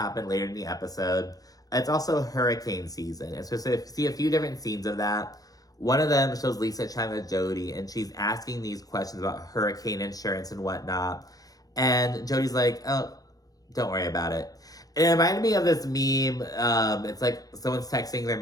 later in the episode. It's also hurricane season. It's supposed to see a few different scenes of that. One of them shows Lisa chatting with Jody, and she's asking these questions about hurricane insurance and whatnot. And Jody's like, "Oh, don't worry about it." And it reminded me of this meme. It's like someone's texting their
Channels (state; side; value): late; right; 0.18 ms